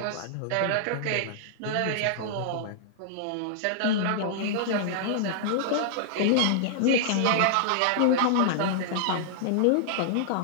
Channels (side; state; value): both; different; correlation -0.01